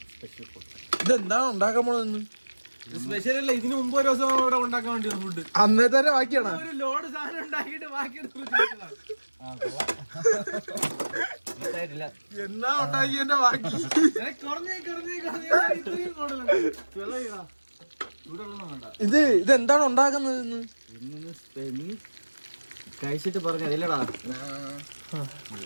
ഇതെന്താണ് ഉണ്ടാക്കാൻ പോണെന്ന്? സ്പെഷ്യൽ അല്ല, ഇതിന് മുമ്പ് ഒരു ദിവസം ഇവിടെ ഉണ്ടാക്കാൻ വേണ്ടി ഫുഡ് അന്നേ തന്നെ ബാക്കിയാണ്. ഒരു ലോഡ് സാധനം ഉണ്ടാക്കിയിട്ട് ബാക്കി എന്നാ ഉണ്ടാക്കിയതിന്റെ ബാക്കി ഇതെന്താണ് ഉണ്ടാക്കുന്നത്? കഴിച്ചിട്ട് പറഞ്ഞതില്ലടാ,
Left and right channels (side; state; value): both; inverted; correlation -1.00